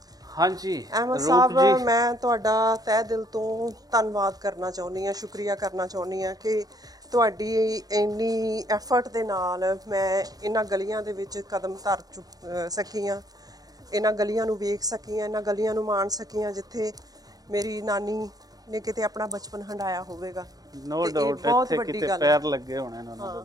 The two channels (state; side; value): late; left; 0.18 ms